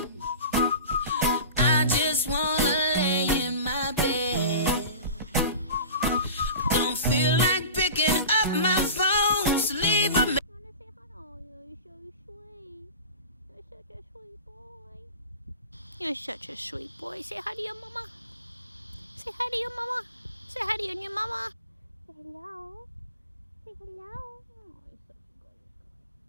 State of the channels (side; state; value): both; inverted; correlation -0.34